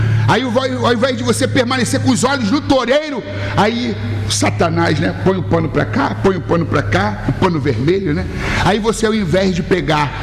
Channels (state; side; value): identical; both; correlation 1.00